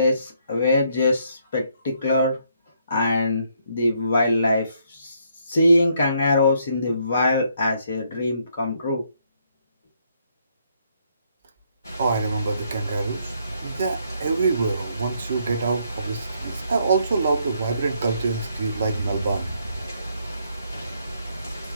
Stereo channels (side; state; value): both; inverted; correlation -0.72